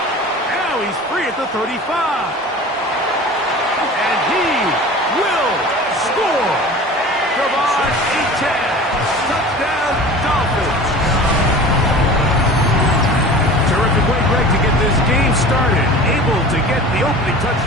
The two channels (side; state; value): both; normal; correlation 0.39